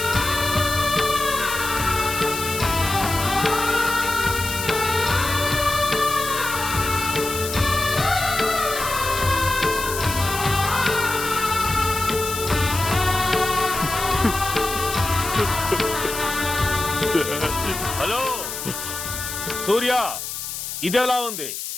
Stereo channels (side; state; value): left; noise; hiss, 6 dB below the sound